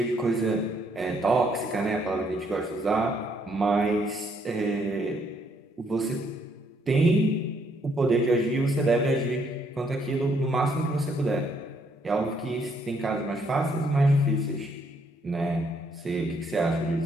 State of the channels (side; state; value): both; normal; correlation 0.70